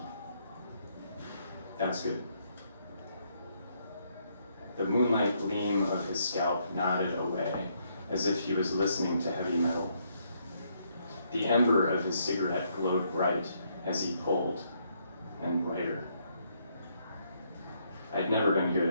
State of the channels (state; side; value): inverted; both; correlation -0.73